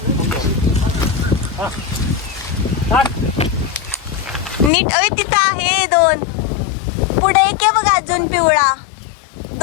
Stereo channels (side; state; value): right; drops out; at 4.7 s